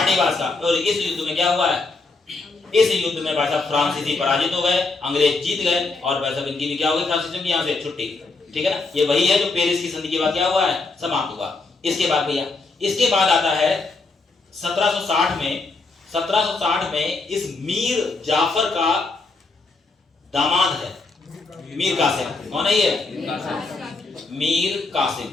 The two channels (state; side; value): quieter; right; 3.7 dB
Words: का। और इस युद्ध में क्या हुआ है? इस युद्ध में भाई साहब फ्रांसीसी पराजित हो गए, अंग्रेज जीत गए, और भाई साहब इनकी भी क्या हो गई? फ्रांसीसियों की यहाँ से छुट्टी। ठीक है ना? ये वही है जो पेरिस की संधि के बाद क्या हुआ है? समाप्त हुआ। इसके बाद भैया, इसके बाद आता है 1760 में इस मीर जाफर का दामाद है मीर कासिम। कौन है ये? मीर कासिम।